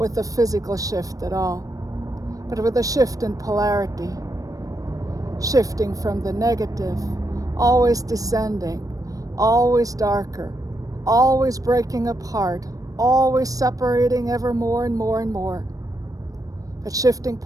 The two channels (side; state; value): left; late; 0.17 ms